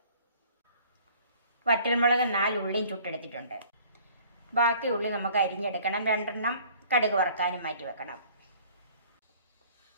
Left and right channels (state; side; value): inverted; both; correlation -0.53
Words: വറ്റൽമുളക് 4 ഉള്ളിയും ചുട്ടെടുത്തിട്ടുണ്ട്. ബാക്കി ഉള്ളി നമുക്ക് അരിഞ്ഞെടുക്കണം. 2 കടുക് വറുക്കാനും മാറ്റി വെക്കണം.